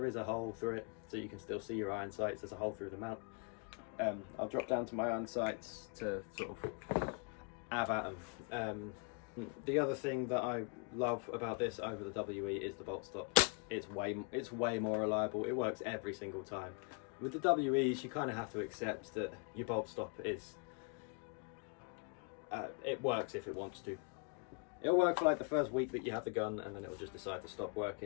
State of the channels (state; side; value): quieter; right; 35.9 dB